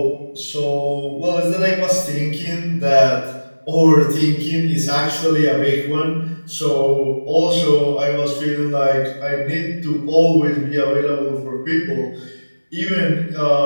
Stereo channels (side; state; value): both; inverted; correlation -1.00